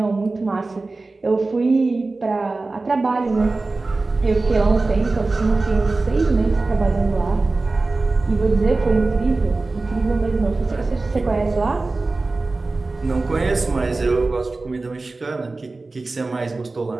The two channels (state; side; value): quieter; left; 3.5 dB